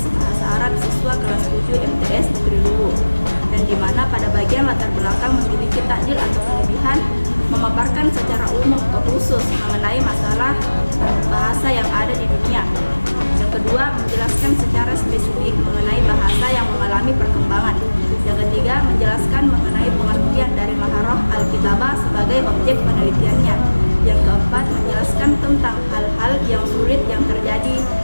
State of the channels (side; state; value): both; inverted; correlation -1.00